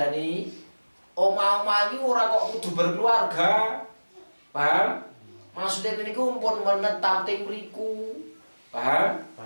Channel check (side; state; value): both; inverted; correlation -1.00